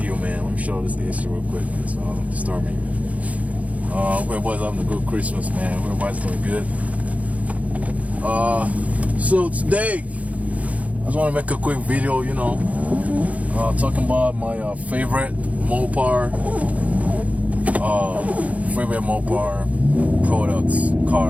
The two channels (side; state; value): left; late; 0.068 ms